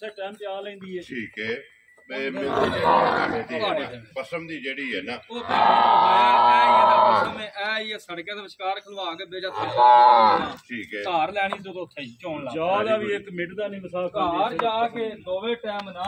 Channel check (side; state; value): both; identical; correlation 1.00